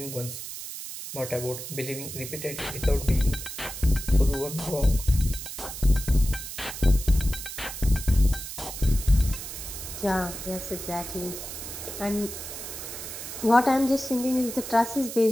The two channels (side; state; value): right; noise; hiss, 9 dB below the sound